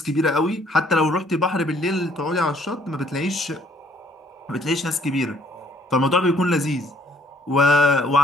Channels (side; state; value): both; normal; correlation 0.63